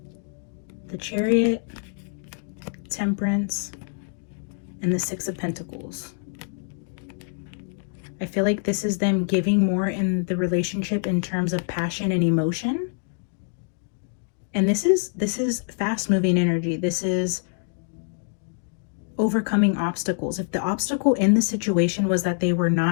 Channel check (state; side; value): silent; right; 61 dB below the other